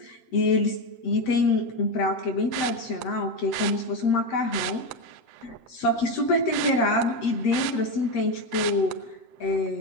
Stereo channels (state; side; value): late; right; 7.7 ms